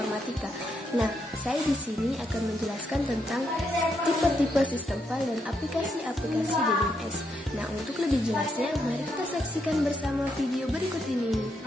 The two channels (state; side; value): normal; both; correlation 0.79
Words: Nah, saya di sini akan menjelaskan tentang tipe-tipe sistem file dan aplikasi-aplikasi DBMS. Nah, untuk lebih jelasnya, mari kita saksikan bersama video berikut ini.